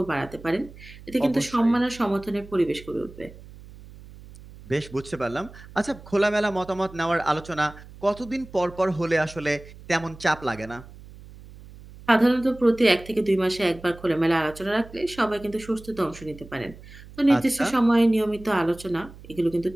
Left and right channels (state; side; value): noise; right; hum, 19 dB below the sound